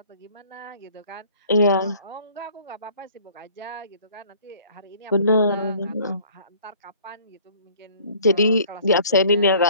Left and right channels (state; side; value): inverted; both; correlation -0.54